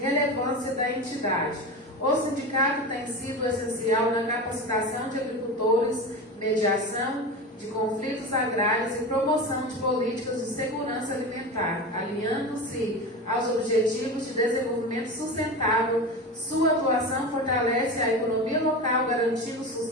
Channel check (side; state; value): both; normal; correlation 0.26